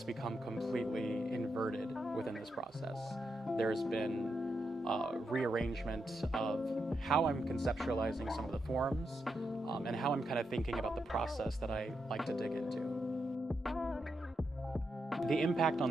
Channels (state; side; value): normal; both; correlation 0.84